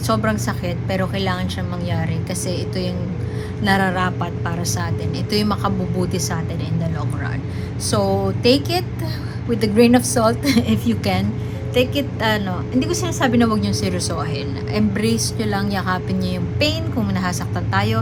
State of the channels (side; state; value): both; identical; correlation 1.00